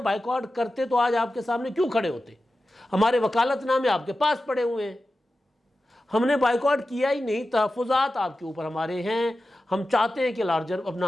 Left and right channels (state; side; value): normal; both; correlation 0.93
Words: بائیکاٹ کرتے تو آج آپ کے سامنے کیوں کھڑے ہوتے؟ ہمارے وکالت نامے آپ کے پاس پڑے ہوئے ہیں۔ ہم نے بائیکاٹ کیا ہی نہیں، تحفظات آپ کے اوپر ہمارے ہیں۔ ہم چاہتے ہیں کہ لارجر